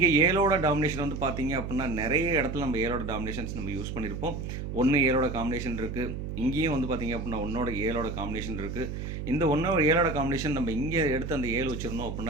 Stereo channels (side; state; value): right; noise; hum, 6 dB below the sound